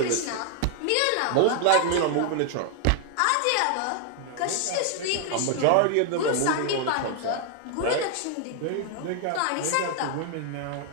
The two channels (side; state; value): both; different; correlation 0.00